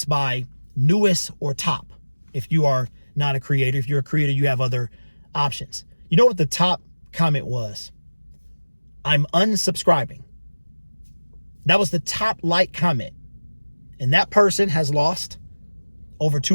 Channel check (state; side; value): inverted; both; correlation -1.00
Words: by newest or top. If you are not a creator, if you're a creator, you have other options. You know what the top comment was? I'm unsubscribing. That was the top like comment. And that person has lost over